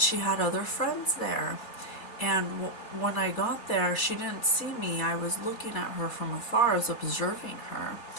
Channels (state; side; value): late; right; 3.3 ms